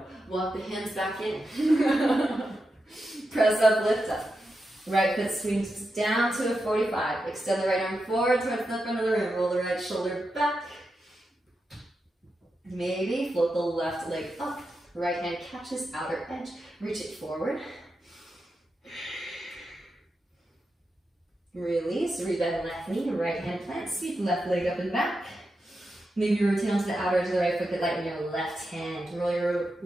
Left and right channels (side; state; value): both; normal; correlation 0.88